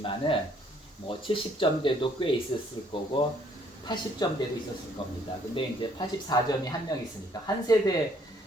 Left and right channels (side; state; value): both; normal; correlation 0.65